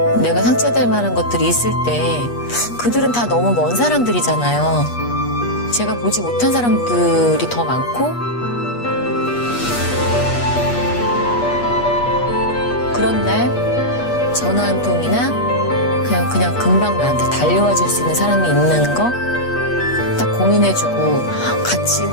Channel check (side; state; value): right; late; 8.3 ms